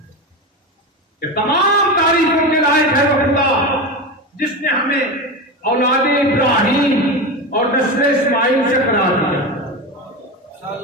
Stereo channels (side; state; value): both; normal; correlation 0.20